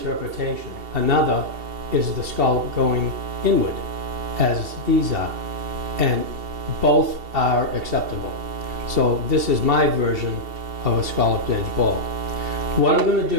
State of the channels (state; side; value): late; left; 2.7 ms